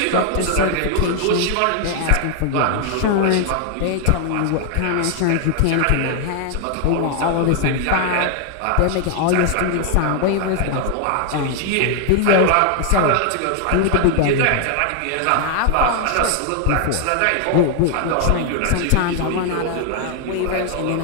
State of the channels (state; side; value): different; both; correlation 0.00